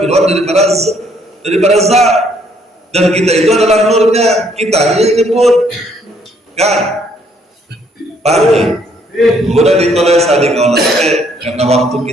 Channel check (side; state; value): both; normal; correlation 0.67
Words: daripada zat, dan kita itu adalah nurnya, kita yang nyebut kan, paham ya? Kemudian ditulis tadi kalau karena waktu